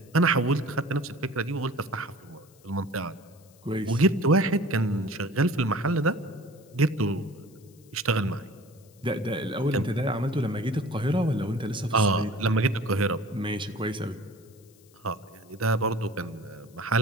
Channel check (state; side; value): noise; left; hiss, 29 dB below the sound